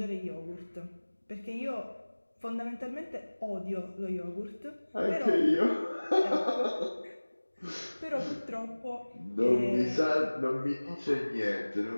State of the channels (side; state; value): both; inverted; correlation -1.00